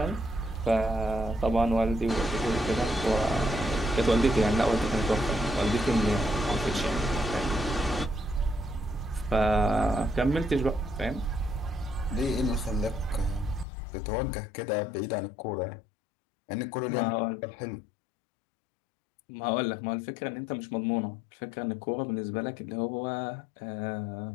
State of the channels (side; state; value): right; drops out; at 13.7 s